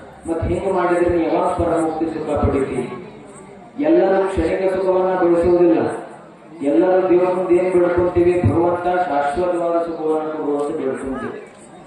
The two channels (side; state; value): both; identical; correlation 1.00